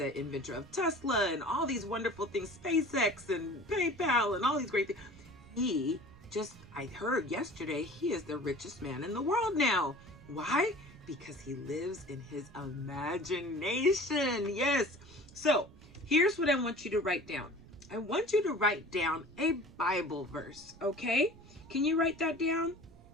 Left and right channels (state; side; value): noise; right; rumble, 22 dB below the sound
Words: inventor of Tesla and all these wonderful things, SpaceX and PayPal and all these great things, I heard yesterday, he is the richest man in the world now. Why? Because he lives in his imagination. Yes. So here's what I want you to write down. I want you to write down a Bible verse, okay? Can you write that down?